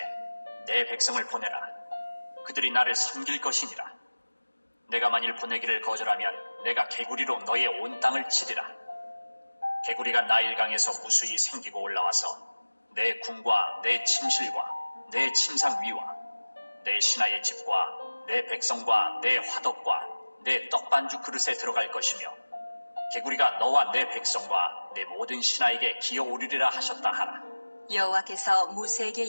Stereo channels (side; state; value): both; inverted; correlation -1.00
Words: 내 백성을 보내라. 그들이 나를 섬길 것이니라. 내가 만일 보내기를 거절하면 내가 개구리로 너의 온 땅을 치리라. 개구리가 나일강에서 무수히 생기고 올라와서 내 궁과 내 침실과 내 침상 위와 내 신하의 집과 내 백성과 내 화덕과 내 떡반죽 그릇에 들어갈 것이며 개구리가 너와 내 백성과 내 모든 신하에게 기어오르리라 하셨다 하라. 여호와께서 모세에게